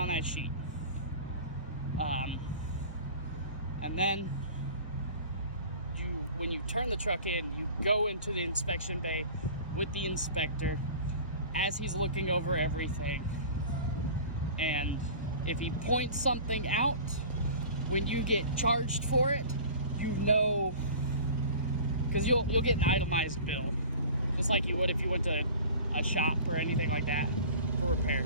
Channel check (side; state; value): both; inverted; correlation -0.41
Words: that sheet. And then when you turn the truck in, you go into the inspection bay with the inspector as he's looking over everything. And if he points something out, when you get charged for it, you know, because you'll get an itemized bill, just like you would if you went to a shop or anything like that for